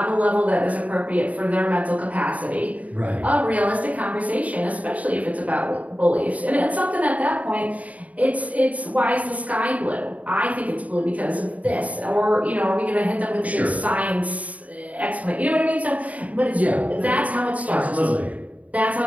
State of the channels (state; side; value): late; left; 0.070 ms